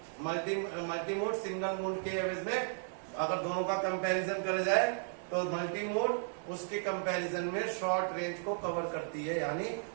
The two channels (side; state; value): left; silent; digital silence